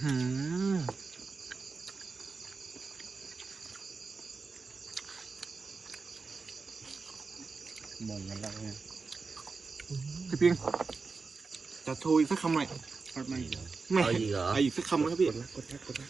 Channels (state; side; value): quieter; left; 4.5 dB